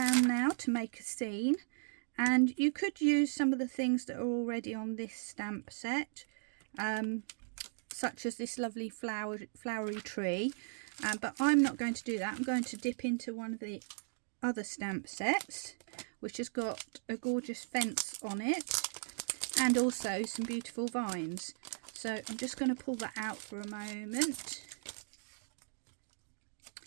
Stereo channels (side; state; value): left; silent; digital silence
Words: now to make a scene, and you could use some of the things that are already on this stamp set, such as this lovely flowery tree, but I'm not going to do that. I'm going to dip into one of the other stamp sets, which has got a gorgeous fence on it and also some beautiful vines. So I'm just going to pull that out for a moment.